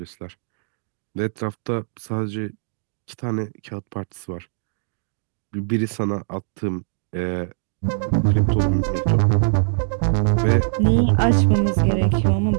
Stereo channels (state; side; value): silent; left; digital silence